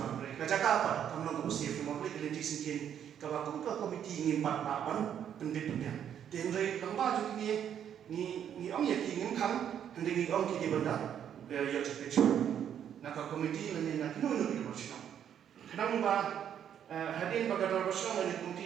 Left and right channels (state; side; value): quieter; left; 9.3 dB